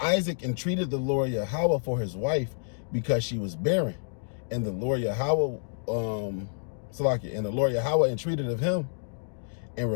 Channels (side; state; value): right; silent; digital silence